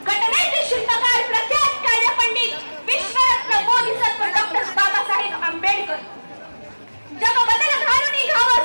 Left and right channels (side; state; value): both; inverted; correlation -1.00